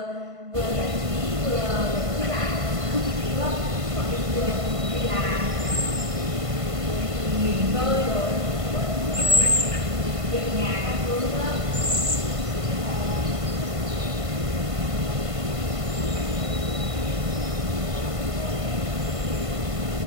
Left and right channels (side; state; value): left; late; 1.5 ms